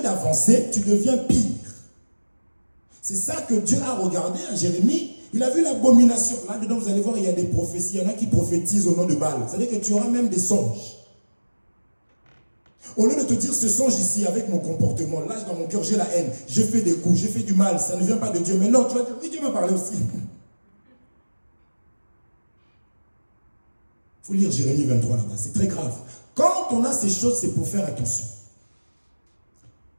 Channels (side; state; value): both; inverted; correlation -1.00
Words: d'avancer, tu deviens pire. C'est ça que Dieu a regardé à Jérémie. Il a vu l'abomination. Là-dedans, vous allez voir, il y a des prophéties. Il y en a qui prophétisent au nom de Baal. C'est-à-dire que tu auras même des songes. Au lieu de te dire, ce songe ici, avec mon comportement, là, dans mon cœur, j'ai la haine. J'ai fait des coups, j'ai fait du mal. Ça ne vient pas de Dieu. Mais non, tu vas dire, oui, Dieu m'a parlé aussi. Il faut lire Jérémie 23 là-bas. C'est très grave. Quand on a ces choses, c'est pour faire attention.